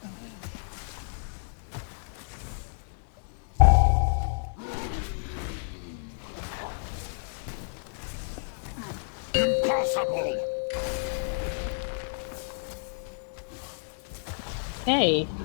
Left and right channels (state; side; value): silent; right; digital silence